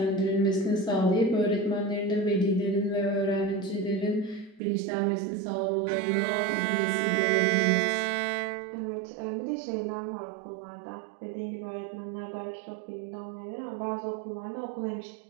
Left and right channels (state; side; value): drops out; left; at 4.6 s